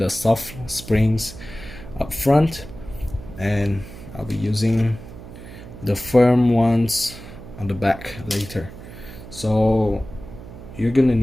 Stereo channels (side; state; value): right; noise; hum, 15 dB below the sound